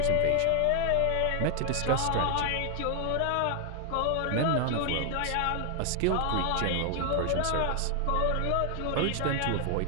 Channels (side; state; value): both; different; correlation 0.00